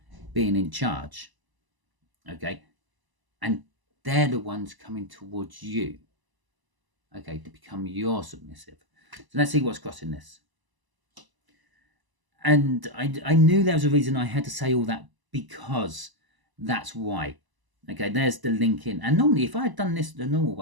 being in charge. Okay, and they're the ones coming towards you, okay, to become your submissive. So let's see what's crossing this. And I knew there was a reason I had to say all that, because that's why. Okay, there's the link in. And normally, if I had done this the normal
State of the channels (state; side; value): late; left; 1.0 ms